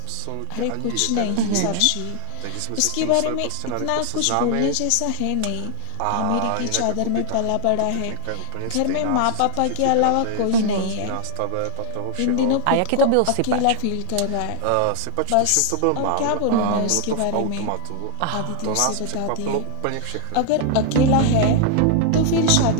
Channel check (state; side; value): different; both; correlation 0.00